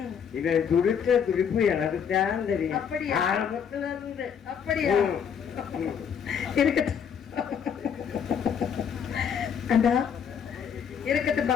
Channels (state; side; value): quieter; right; 7.5 dB